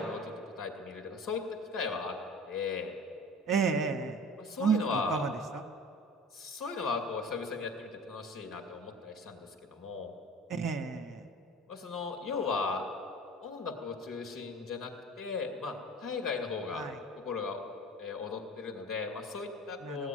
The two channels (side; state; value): both; normal; correlation 0.40